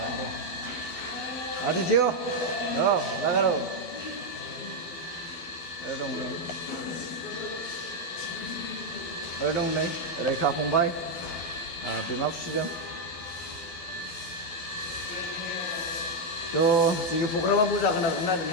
दे आदित्य लागार दं नै दं नै रैखा फंबाय बिमा फिसिदों। थ' जोंनि प्रग्रामा जागोन आरोना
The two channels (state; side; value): late; right; 12 ms